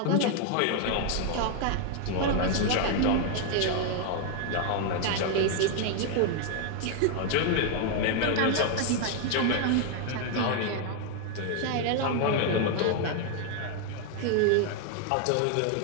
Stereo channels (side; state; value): both; different; correlation 0.00